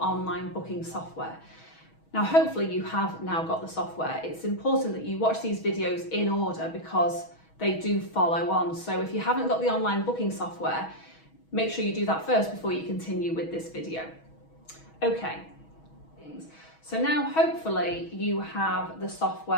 online booking software. Now hopefully you have now got the software. It's important that you watch these videos in order because they do follow on. So if you haven't got the online booking software, make sure you do that first before you continue with this video. Okay, so now hopefully you have the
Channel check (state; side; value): late; right; 6.2 ms